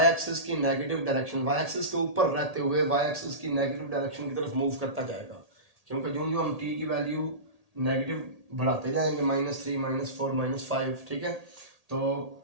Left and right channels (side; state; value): left; late; 1.8 ms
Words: एक्सिस की नेगेटिव डायरेक्शन, वाई एक्सिस के ऊपर रहते हुए वाई एक्सिस की नेगेटिव डायरेक्शन की तरफ मूव करता जाएगा। क्योंकि यूं हम टी की वैल्यू नेगेटिव बढ़ाते जाएंगे, -3 -4 -5। ठीक है, तो